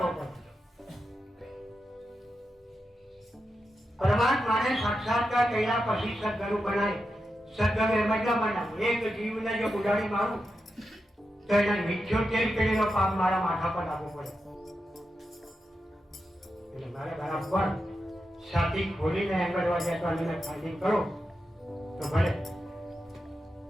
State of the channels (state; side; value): normal; both; correlation 0.88